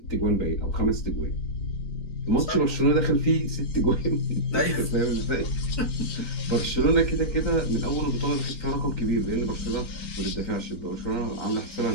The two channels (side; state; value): right; late; 4.6 ms